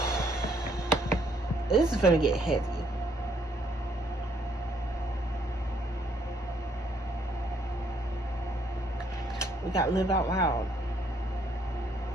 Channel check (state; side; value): normal; both; correlation 0.68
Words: This is gonna get heavy. We got live out loud.